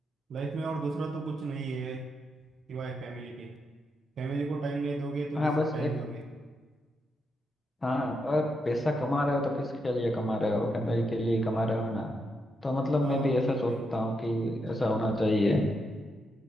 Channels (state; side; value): normal; both; correlation 0.82